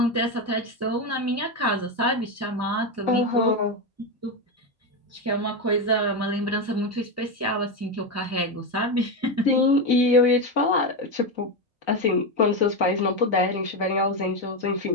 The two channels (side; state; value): both; normal; correlation 0.12